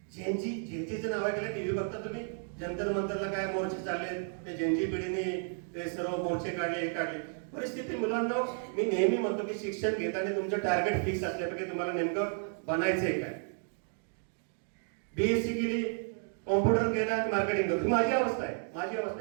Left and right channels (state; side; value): silent; left; 56 dB below the other